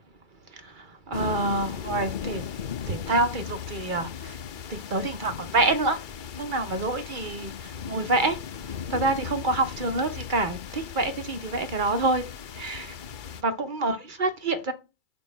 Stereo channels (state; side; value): late; left; 2.3 ms